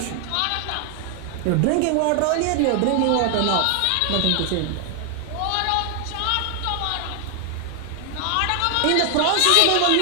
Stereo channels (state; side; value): different; both; correlation 0.00